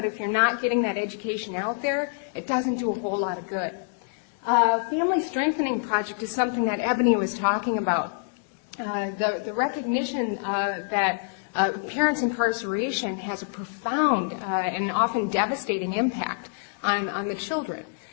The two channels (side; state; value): right; silent; digital silence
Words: if you're not getting that education out there, it doesn't do a whole lot of good. Family Strengthening Project is something that Ebony was talking about. The recognition that parents' incarceration has a profound and often devastating impact on the children.